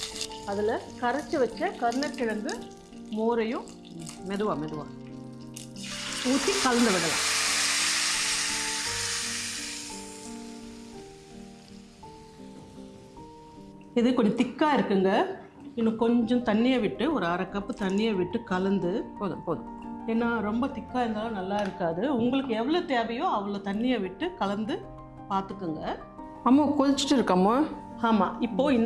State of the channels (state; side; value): identical; both; correlation 1.00